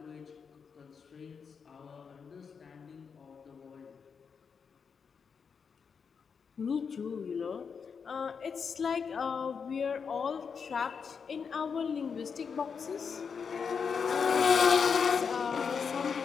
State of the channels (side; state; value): right; quieter; 6.1 dB